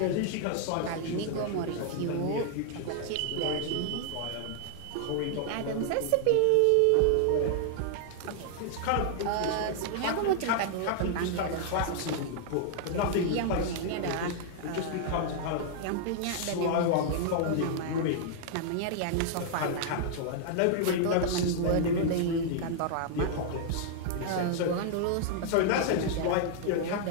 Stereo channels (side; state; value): both; different; correlation -0.01